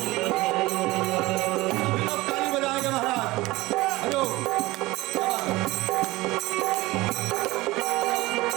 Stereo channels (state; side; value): quieter; left; 20.0 dB